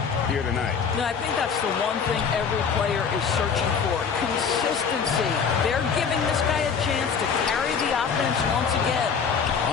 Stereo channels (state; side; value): quieter; right; 6.2 dB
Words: here tonight. No, I think that's the one thing every player is searching for. Consistency. They're giving this guy a chance to carry the offense once again.